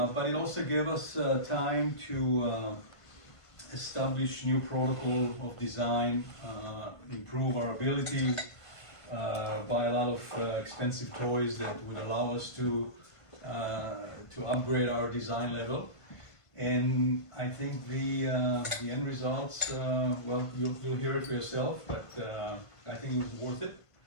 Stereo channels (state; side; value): late; right; 1.5 ms